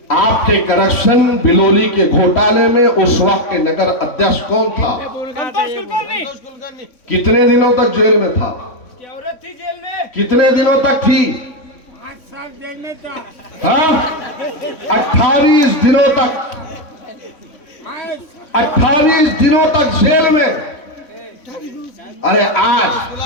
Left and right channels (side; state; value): right; late; 3.6 ms